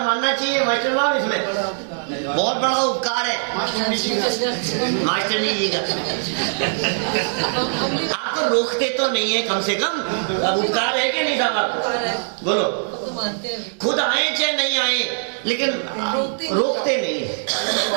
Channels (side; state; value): left; silent; digital silence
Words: चाहिए मास्टर साहब, इसमें बहुत बड़ा उपकार है मास्टर जी का। आप तो रोकते तो नहीं है कम से कम, अब उपकार है कि नहीं साहब आपको? बोलो, खुद आए चाहे नहीं आए, लेकिन रोकते नहीं है।